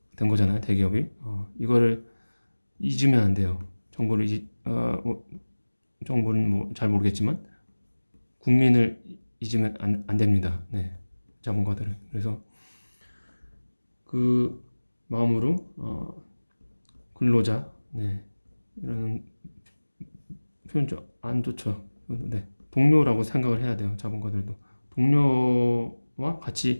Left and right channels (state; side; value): inverted; both; correlation -1.00